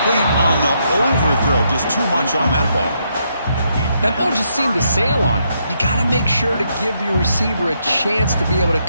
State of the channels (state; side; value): inverted; both; correlation -0.77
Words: on the overthrow. Just too much on that ball. That ball just seemed to sail on. You got to make sure to give your receiver a chance to be able to